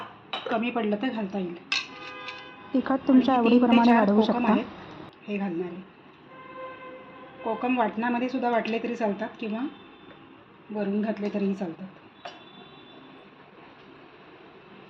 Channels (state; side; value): identical; both; correlation 1.00